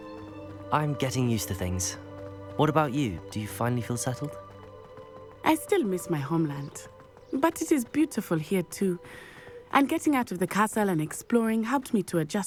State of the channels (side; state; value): both; identical; correlation 1.00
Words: I'm getting used to things. What about you? Do you finally feel settled? I still miss my homeland, but it is beautiful here too. And getting out of the castle and exploring helped me to